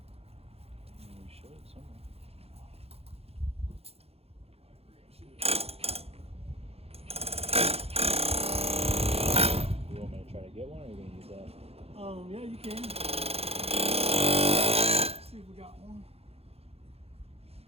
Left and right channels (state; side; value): late; left; 0.29 ms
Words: We should somewhere. You want me to try to get one, or are you gonna use that? Yeah, you can. Let's see if we got one.